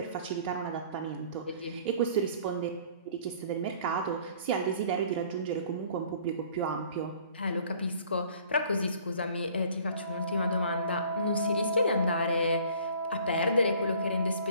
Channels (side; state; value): both; inverted; correlation -0.53